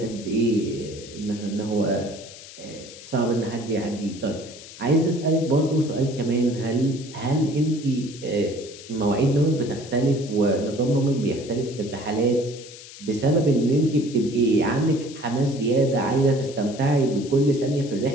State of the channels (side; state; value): left; noise; hiss, 16 dB below the sound